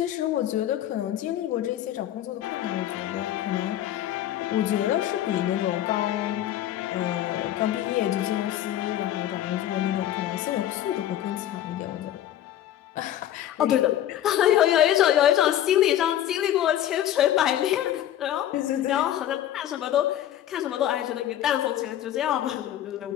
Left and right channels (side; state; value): right; quieter; 11.9 dB